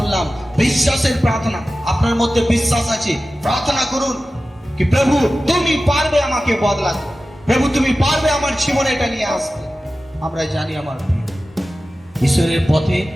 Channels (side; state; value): both; normal; correlation 0.95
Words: বিশ্বাসের প্রার্থনা। আপনার মধ্যে বিশ্বাস আছে, প্রার্থনা করুন কি, প্রভু তুমি পারবে আমাকে বদলাতে, প্রভু তুমি পারবে আমার জীবনে এটা নিয়ে আসতে। আমরা জানি আমার ঈশ্বরের পথে